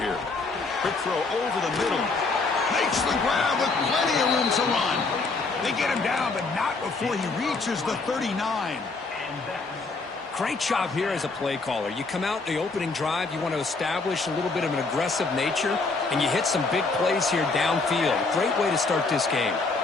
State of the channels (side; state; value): right; quieter; 3.9 dB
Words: here. Quick throw over the middle. Makes the grab with plenty of room to run. They get him down, but not before he reaches the 39. Great job here as a play caller. You come out in the opening drive, you want to establish a little bit of an aggressive nature, and you hit some big plays here downfield. Great way to start this game.